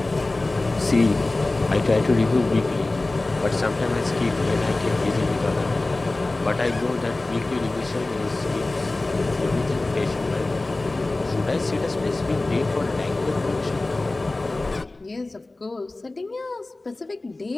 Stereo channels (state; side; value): quieter; right; 3.0 dB